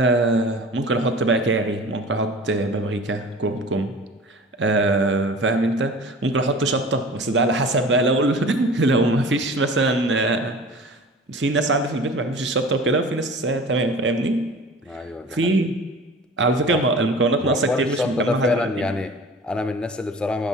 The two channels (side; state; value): both; normal; correlation 0.41